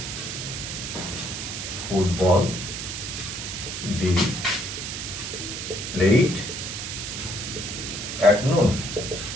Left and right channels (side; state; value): right; noise; hiss, 5 dB below the sound